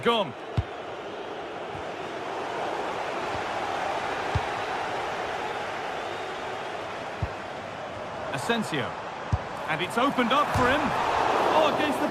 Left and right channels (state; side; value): identical; both; correlation 1.00